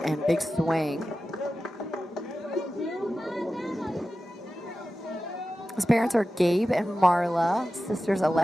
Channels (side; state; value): both; normal; correlation 0.93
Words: and big swing. His parents are Gabe and Marla, sisters